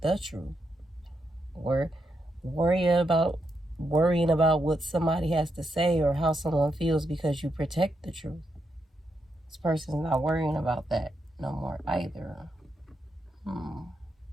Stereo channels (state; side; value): normal; both; correlation 0.82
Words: the truth, or worrying about what somebody has to say or how someone feels because you protect the truth. This person's not worrying about that no more either.